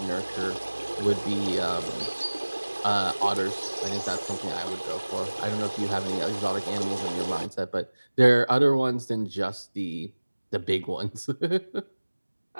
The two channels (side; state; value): both; inverted; correlation -1.00